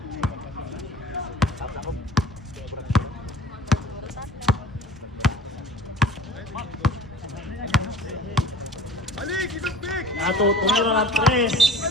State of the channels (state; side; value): normal; both; correlation 0.44